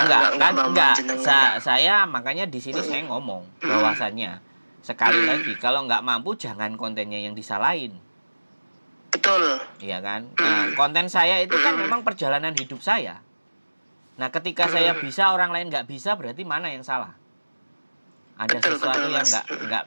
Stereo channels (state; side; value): inverted; both; correlation -1.00